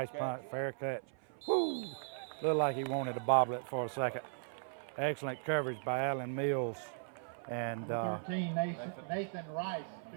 catch. Fair catch. Woo! Looked like he wanted to bobble it for a second. Right. Excellent coverage by Alan Mills. And 13, Nathan Rice.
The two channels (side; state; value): left; silent; 53 dB below the other